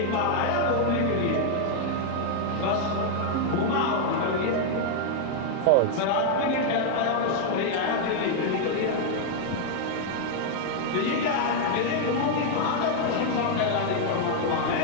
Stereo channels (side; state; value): both; different; correlation 0.00